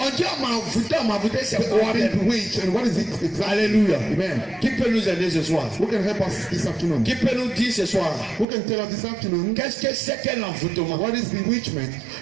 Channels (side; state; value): left; drops out; at 8.5 s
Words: dit on m'a envoûté, c'est But quoi? I've been bewitched, and what is it exactly? Alléluia. Amen. Qui peut nous aider ce soir? Who can help us this afternoon? Qui peut nous dire ce soir? Who can tell us this afternoon Qu'est-ce que c'est qu'un envoûtement? what is bewitchment?